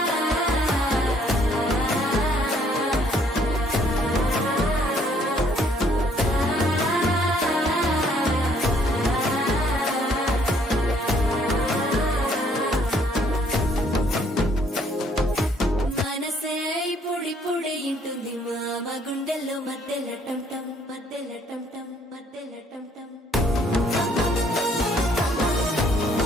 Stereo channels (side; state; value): both; normal; correlation 0.64